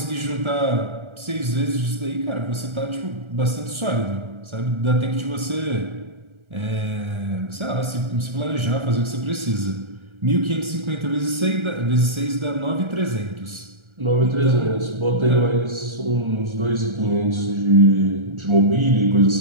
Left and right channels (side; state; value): left; late; 1.4 ms